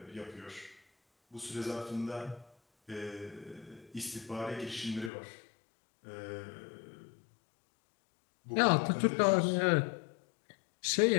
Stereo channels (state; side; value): drops out; right; at 5.1 s